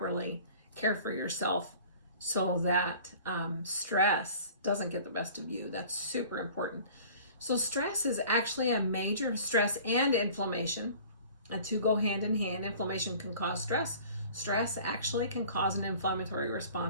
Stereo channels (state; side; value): inverted; both; correlation -0.46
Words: care for yourself so that stress doesn't get the best of you. That's super important. So stress is actually a major stress and inflammation. And two go hand in hand. Inflammation can cause stress. Stress actually can cause an inflammatory